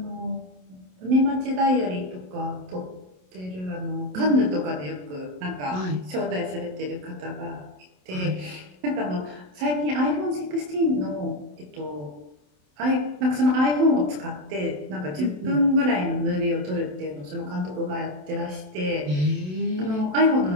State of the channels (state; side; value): late; left; 27 ms